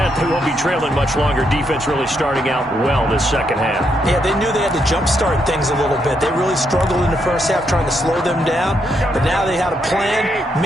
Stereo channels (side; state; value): both; normal; correlation 0.78